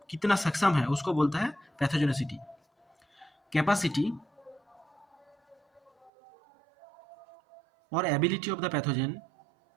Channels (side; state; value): left; drops out; at 6.1 s